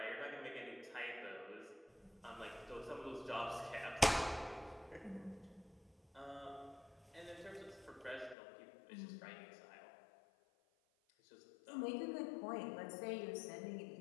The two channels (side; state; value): right; drops out; at 8.3 s